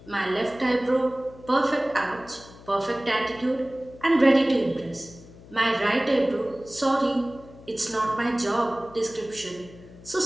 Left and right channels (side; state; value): left; noise; hum, 20 dB below the sound